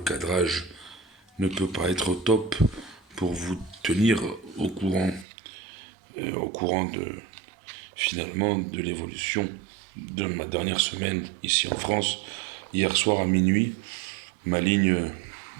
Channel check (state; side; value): drops out; left; at 5.2 s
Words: cadrage ne peut pas être au top pour vous tenir au courant finalement de l'évolution de ma dernière semaine ici en France. Hier soir à minuit, ma ligne